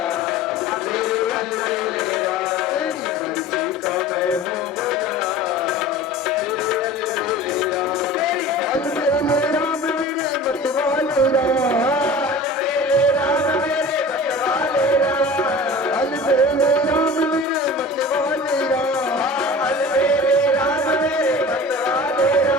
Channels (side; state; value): both; normal; correlation 0.39